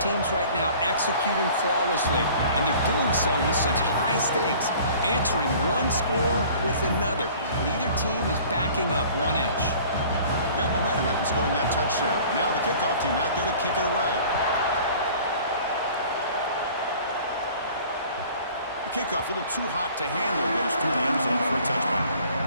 right now executing flawlessly, and they're doing so with such high stakes, answering one score with another. Neither team is backing up 1 inch. Got momentum after scoring that touchdown. Now the kickoff team out there to kick it away. Kickoff, a little too hot to handle, goes through the end zone for a touchback.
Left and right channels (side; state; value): both; inverted; correlation -0.48